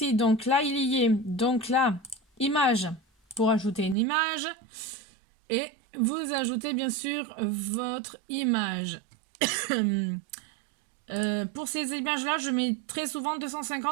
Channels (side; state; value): left; drops out; at 4.0 s